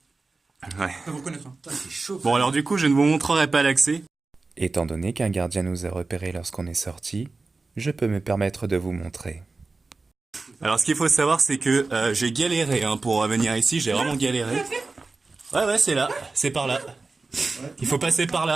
Ouais. Ça vous connaître. C'est chaud. Bon, alors du coup, je ne vous montrerai pas l'accès. Étant donné qu'un gardien nous a repérés lorsqu'on est sorti, je peux me permettre de vous montrer. Alors, ce qu'il faut savoir, c'est que j'ai galéré hein, pour venir ici. J'ai vraiment galéré. Ouais, c'est là. C'est par là. Il faut passer par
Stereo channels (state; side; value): quieter; left; 3.8 dB